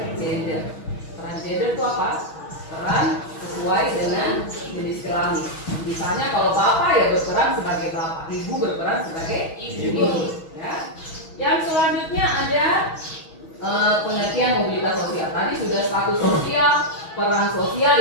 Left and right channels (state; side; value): late; right; 6.2 ms